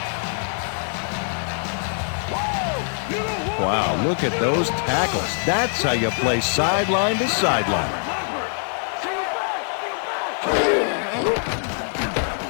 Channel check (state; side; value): silent; right; 59 dB below the other